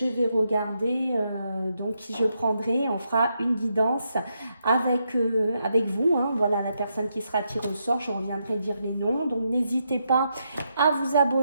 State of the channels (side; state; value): both; inverted; correlation -0.81